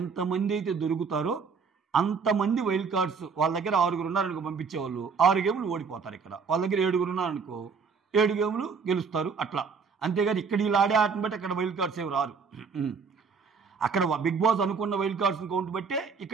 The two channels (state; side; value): quieter; left; 5.5 dB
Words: అయితే దొరుకుతారో అంతమంది వైల్డ్ కార్డ్స్, వాళ్ళ దగ్గర 6 ఉన్నారనుకో పంపించేవాళ్ళు 6 గేములు ఓడిపోతారు. ఇక్కడ వాళ్ళ దగ్గర 7 ఉన్నారనుకో 7 గేములు గెలుస్తారు. అట్లా అంతేగాని ఇక్కడ వీళ్ళు ఆడే ఆటను బట్టి అక్కడ వైల్డ్ కార్డ్స్ ఏమి రారు. అక్కడ బిగ్ బాస్ అనుకున్న వైల్డ్ కార్డ్స్ని కౌంట్ బట్టే